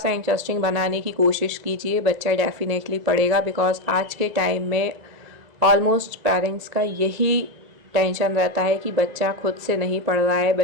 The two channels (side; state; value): left; late; 2.0 ms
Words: इंटरेस्टिंग बनाने की कोशिश कीजिए, बच्चा डेफिनेटली पढ़ेगा, बिकॉज आज के टाइम में ऑलमोस्ट पेरेंट्स का यही टेंशन रहता है कि बच्चा खुद से नहीं पढ़ रहा है,